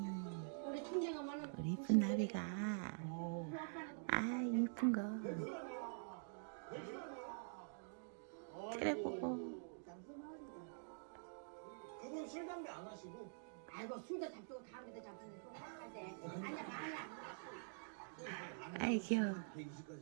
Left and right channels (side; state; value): left; silent; digital silence